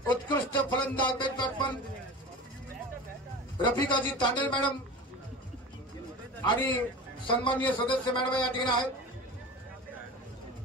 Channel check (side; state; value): both; normal; correlation 0.33